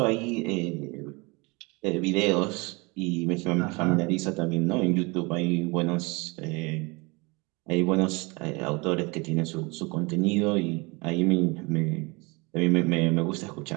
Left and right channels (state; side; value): quieter; left; 27.1 dB